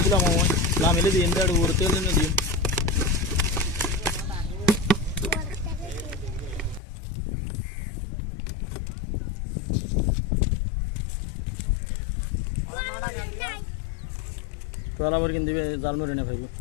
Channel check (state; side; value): drops out; right; at 6.8 s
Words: লামিলে দিন উড়তে দিন তোলা বর কিন দিবে জালমুড়ি না ভাইবি